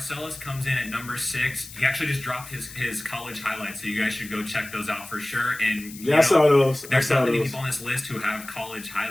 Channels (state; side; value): noise; left; hiss, 16 dB below the sound